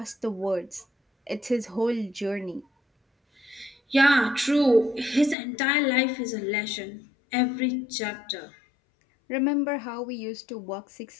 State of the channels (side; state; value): right; drops out; at 5.4 s